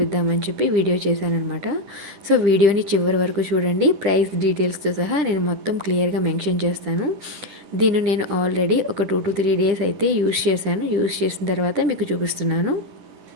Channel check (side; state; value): left; late; 10 ms